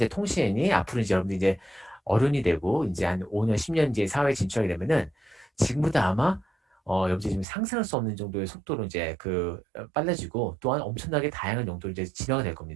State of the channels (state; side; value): drops out; left; at 7.5 s